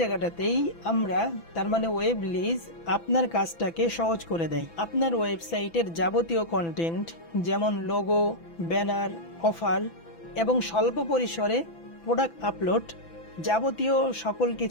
আমরা, তার মানে ওয়েব লিজ, আপনার কাজটাকে সহজ করে দেয়। আপনার ওয়েবসাইটের যাবতীয় কন্টেন্ট, যেমন লোগো, ব্যানার, অফার এবং স্বল্প পরিসরে প্রোডাক্ট আপলোড, যাবতীয় সকল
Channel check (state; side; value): late; right; 6.0 ms